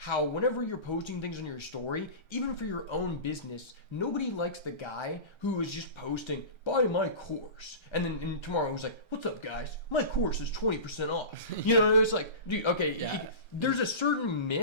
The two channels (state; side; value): late; right; 1.3 ms